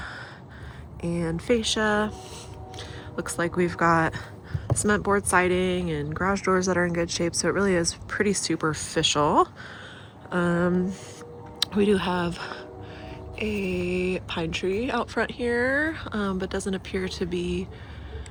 and fascia. Looks like we've got cement board siding and garage doors that are in good shape, so it really is pretty superficial. We do have a pine tree out front here, but doesn't appear to be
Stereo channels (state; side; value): identical; both; correlation 1.00